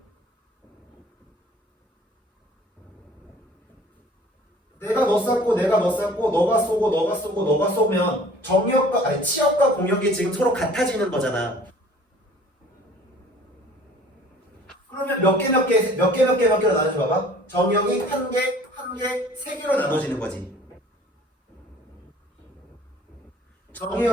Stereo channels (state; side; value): normal; both; correlation 0.50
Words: 내가 너 쐈고 내가 너 쐈고 너가 쏘고 너가 쏘고 너가 쏘면 정역과 아니 치역과 공역이 지금 서로 같아지는 거잖아. 그러면 몇 개로 나눠줘 봐봐. 정역이 한 개, 한 개, 3개로 나눠지는 거지.